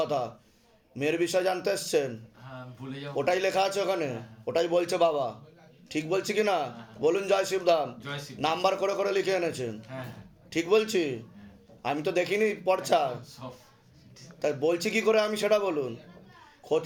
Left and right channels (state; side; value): identical; both; correlation 1.00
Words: কথা। মেয়ের বিষয় জানতে এসছেন? হ্যাঁ, ভুলে যাও। ওটাই লেখা আছে ওখানে, ওটাই বলছে বাবা। ঠিক বলছি কি না বলুন? জয় শিবধাম। জয় শিব। নাম্বার করে করে লিখে এনেছেন, হ্যাঁ হ্যাঁ, ঠিক বলছি? আমি তো দেখিনি পর্চা, সব। তাই বলছি কি করে আমি সেটা বলুন।